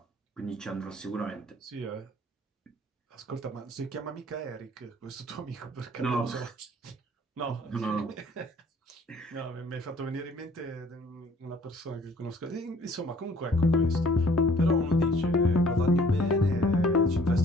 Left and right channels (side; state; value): both; normal; correlation 0.56